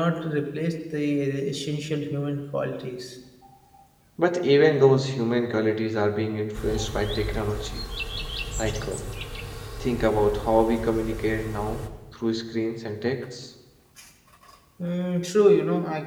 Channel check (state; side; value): identical; both; correlation 1.00